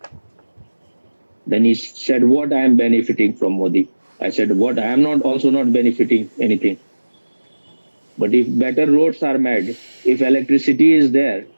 Then he said, what I am benefiting from Modi? I said, what I am not also not benefiting anything. But if better roads are made, if electricity is there,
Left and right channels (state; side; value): inverted; both; correlation -1.00